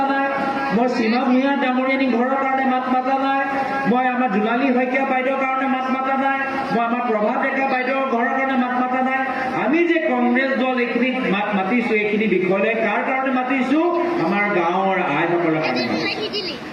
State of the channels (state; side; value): identical; both; correlation 1.00